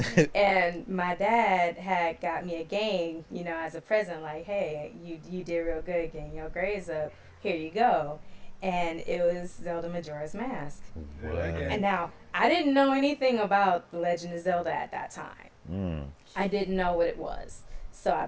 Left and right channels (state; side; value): identical; both; correlation 1.00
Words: And my dad had got me a game, as a present. Like, hey, you did real good getting your grades up. Here you go. And it was Zelda Majora's Mask. What? And now, I didn't know anything about The Legend of Zelda at that time. I didn't know what it was. So